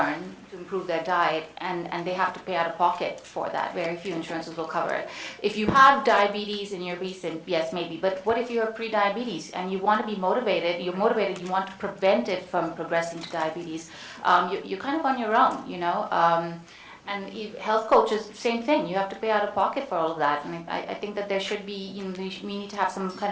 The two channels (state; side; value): identical; both; correlation 1.00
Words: to improve their diet and they have to pay out of pocket for that. Very few insurances will cover it. If you have diabetes and you're obese, then yes, maybe. But what if you're pre-diabetes and you want to be motivated? You're motivated. You want to prevent it from progressing to diabetes. You're kind of on your own, you know. And health coaches, same thing. You have to pay out of pocket for all of that. And I think that there should be, you know, we need to have some